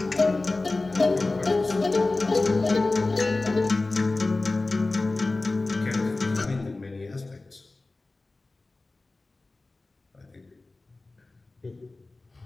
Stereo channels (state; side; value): quieter; right; 3.3 dB